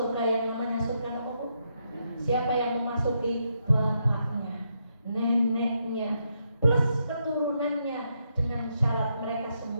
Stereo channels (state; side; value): inverted; both; correlation -0.80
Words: yang namanya surga apa? Siapa yang memasuki? Bapaknya, neneknya, plus keturunannya, dengan syarat mereka